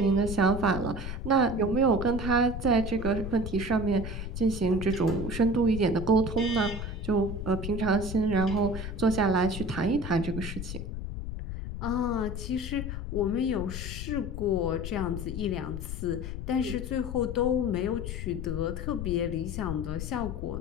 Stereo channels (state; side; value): noise; left; rumble, 6 dB below the sound